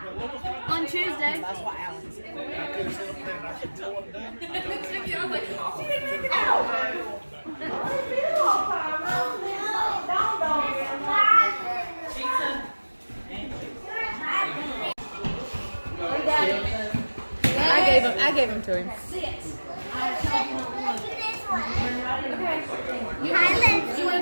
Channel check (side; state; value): both; inverted; correlation -1.00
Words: On Tuesday. I gave him to him. You want to